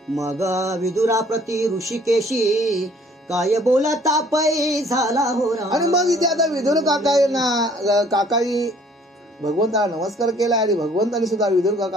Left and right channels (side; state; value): both; normal; correlation 0.58